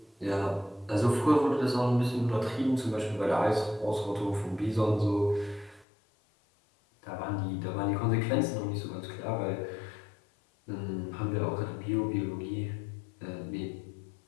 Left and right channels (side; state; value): right; drops out; at 5.9 s